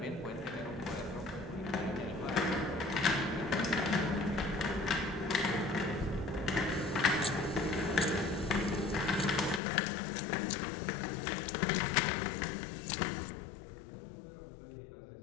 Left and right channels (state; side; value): drops out; right; at 9.6 s